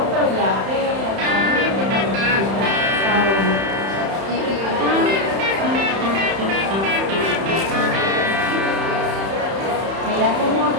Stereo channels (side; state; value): left; late; 31 ms